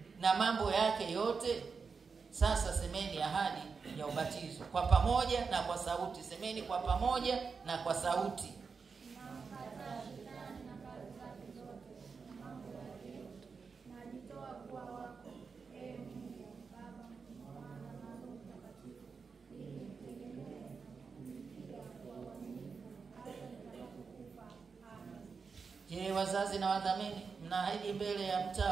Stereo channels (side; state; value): left; quieter; 5.2 dB